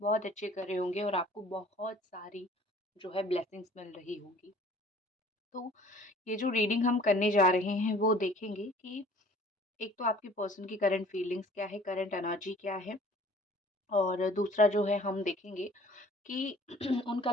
अच्छे कर रहे होंगे और आपको बहुत सारी जो है ब्लेसिंग्स मिल रही होंगी। तो ये जो रीडिंग हम करने जा रहे हैं वो देखेंगे कि एक तो आपकी पर्सन की करंट फीलिंग्स क्या है, करंट एनर्जी क्या है, और दूसरा जो है हम देखेंगे कि उनका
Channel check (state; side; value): normal; both; correlation 0.51